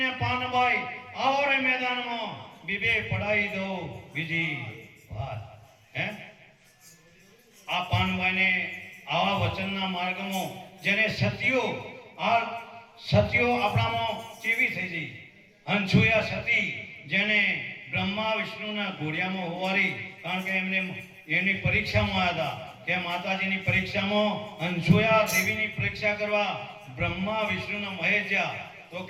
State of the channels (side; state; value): both; identical; correlation 1.00